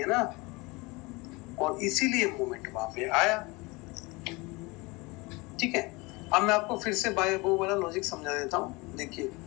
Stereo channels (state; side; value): quieter; right; 25.0 dB